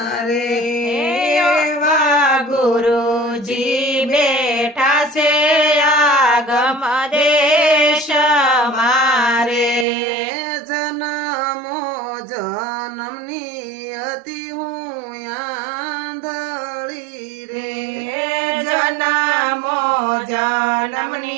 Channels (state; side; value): drops out; left; at 9.9 s